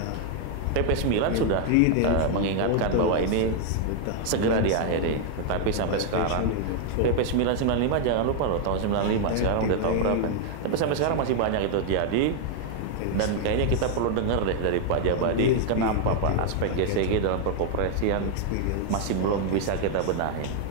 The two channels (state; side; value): different; both; correlation 0.00